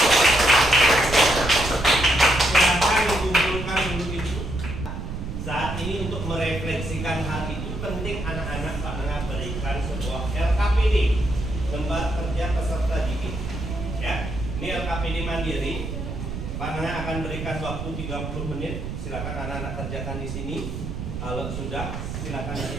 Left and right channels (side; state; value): right; noise; rumble, 6 dB below the sound